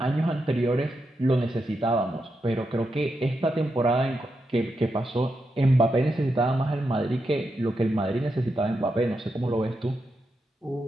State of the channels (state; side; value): normal; both; correlation 0.85